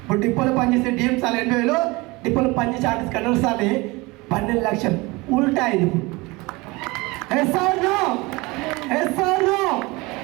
ఇప్పుడు డిపోలో పనిచేసే డిఎం సార్లు 80,000, డిపోలో పనిచేసే ఆర్టిస్ట్ కండక్టర్ సార్లు 12,00,000. ఉల్టా ఇది. ఎస్ఆర్నో.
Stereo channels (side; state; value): left; quieter; 23.6 dB